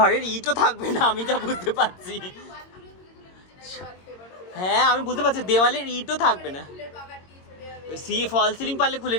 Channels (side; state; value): right; late; 22 ms